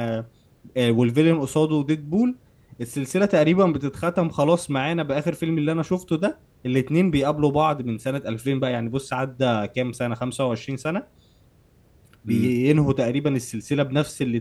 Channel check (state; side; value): identical; both; correlation 1.00